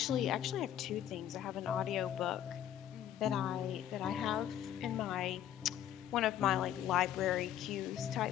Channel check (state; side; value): quieter; right; 11.1 dB